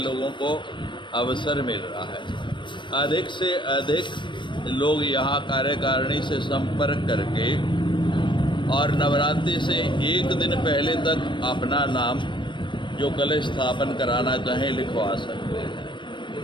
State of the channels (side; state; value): right; late; 0.23 ms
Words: को अवसर मिल रहा है। अधिक से अधिक लोग यहाँ कार्यकारिणी से संपर्क करके और नवरात्रि से 1 दिन पहले तक अपना नाम जो कलश स्थापन कराना चाहें लिखवा सकते हैं।